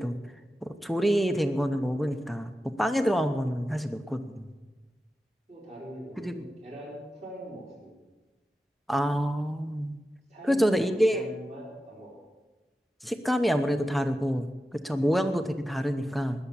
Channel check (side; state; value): both; normal; correlation 0.92